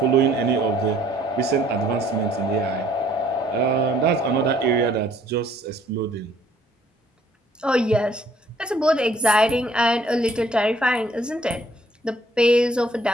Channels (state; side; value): normal; both; correlation 0.60